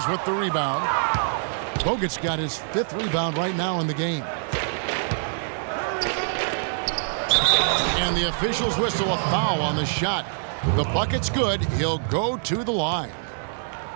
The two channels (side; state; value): left; silent; digital silence